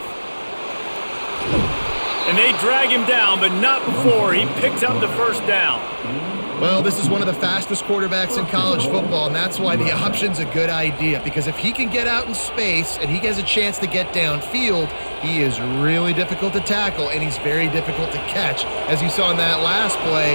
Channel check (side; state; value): both; inverted; correlation -1.00